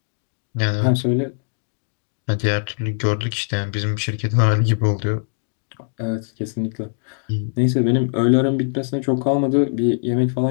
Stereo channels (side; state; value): right; silent; digital silence